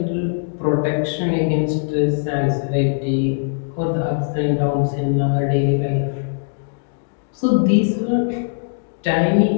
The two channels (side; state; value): right; silent; digital silence